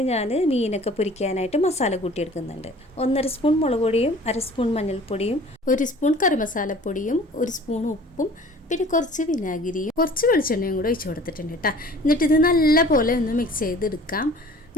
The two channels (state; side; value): normal; both; correlation 0.48